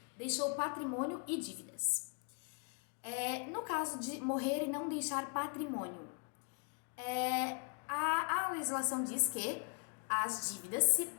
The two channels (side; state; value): right; quieter; 39.4 dB